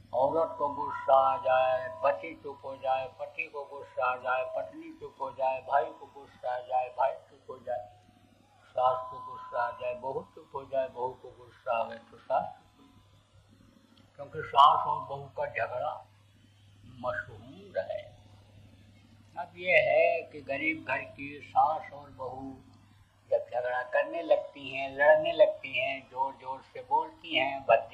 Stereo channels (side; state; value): both; identical; correlation 1.00